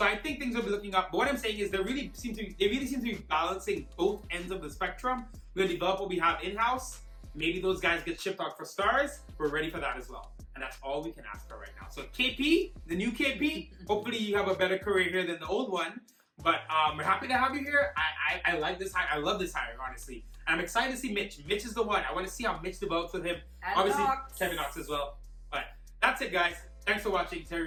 I think things will be looking up. But what I'm saying is they really seem to be balancing both ends of the spectrum. We're gonna develop what we have in-house. Maybe those guys get shipped out for stars. We're ready for that as well. And that's all we can ask for right now. So KP, the new KP, hopefully you have a better career here than the old one. But we're happy to have you here. I like this hire. I love this hire, honestly. And I'm excited to see Mitch. Mitch is the one. I want to see how Mitch develops with him. And obviously, Knox. Kevin Knox as well. But that's it, guys. Thanks for watching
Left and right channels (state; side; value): identical; both; correlation 1.00